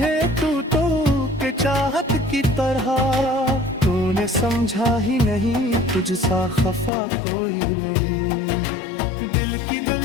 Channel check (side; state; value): right; drops out; at 6.9 s